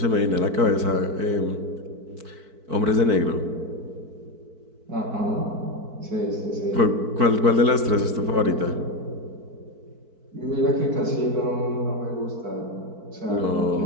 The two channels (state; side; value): late; left; 4.5 ms